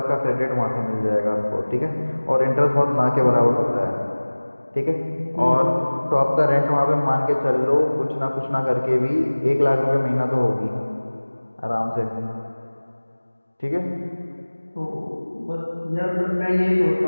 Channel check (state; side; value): inverted; both; correlation -1.00